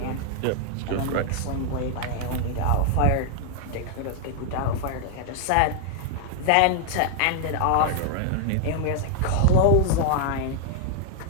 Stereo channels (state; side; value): different; both; correlation 0.00